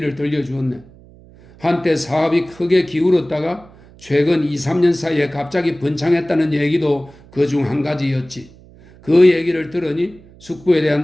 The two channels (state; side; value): noise; right; hum, 24 dB below the sound